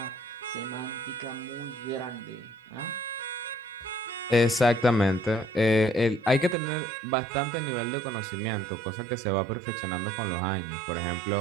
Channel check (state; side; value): drops out; left; at 6.6 s